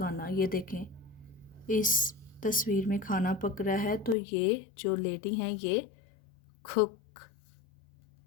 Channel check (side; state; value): right; drops out; at 4.2 s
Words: ये देखें इस तस्वीर में खाना पक रहा है, तो ये जो लेडी हैं ये कुक,